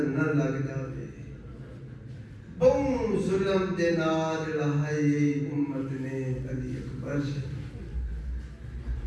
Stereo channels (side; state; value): both; identical; correlation 1.00